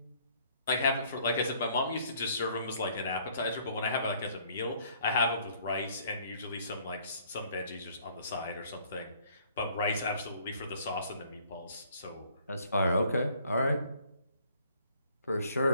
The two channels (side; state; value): both; inverted; correlation -0.61